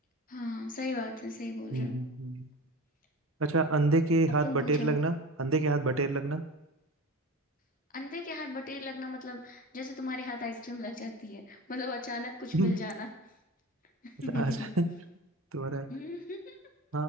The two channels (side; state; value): both; normal; correlation 0.33